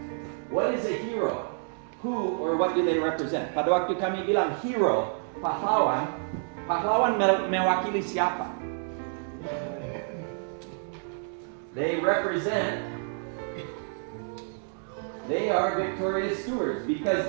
what is a hero? Who or what do they represent? Pada waktu kami bilang hero, pahlawan mewakili siapa? They are victorious stewards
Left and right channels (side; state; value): left; silent; digital silence